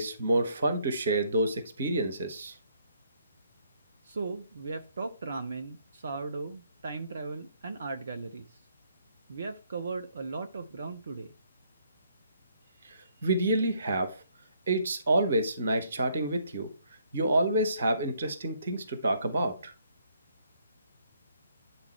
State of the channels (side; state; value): both; inverted; correlation -0.69